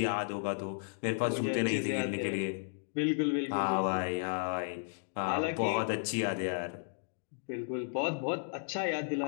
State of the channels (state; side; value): silent; right; digital silence